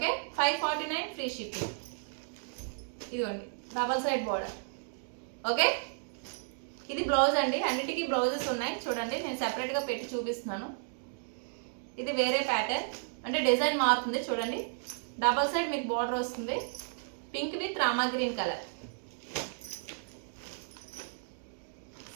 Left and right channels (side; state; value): left; silent; digital silence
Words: 549 free shipping. ఇదిగోండి డబల్ సైడ్ బార్డర్. ఓకే, ఇది బ్లౌజ్ అండి. అన్నిటికీ బ్లౌజెస్ ఉన్నాయి. చూడండి నేను సెపరేట్గా పెట్టి చూపిస్తున్నాను. ఇది వేరే ప్యాటర్న్, అంటే డిజైన్ మారుతుంది. చూడండి డబల్ సైడ్ మీకు బార్డర్ వస్తుంది. Pink with Rama green colour.